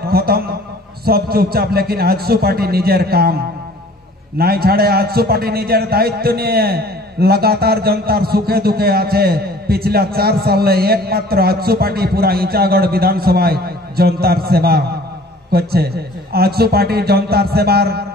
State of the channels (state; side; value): normal; both; correlation 0.50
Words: খতম সব চুপচাপ, লেকিন আজসু পার্টি নিজের কাম নাই ছাড়ে। আজসু পার্টি নিজের দায়িত্ব নিয়ে लगातार जनतार सुखे दुखे आछे। पिछला 4 साल एकमात्र आजसू पार्टी पूरा इचागढ़ विधानसभा जनतार सेवा करछे। आजसू पार्टी जनतार सेवार